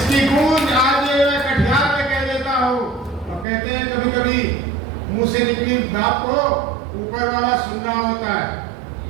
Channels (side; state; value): left; drops out; at 3.5 s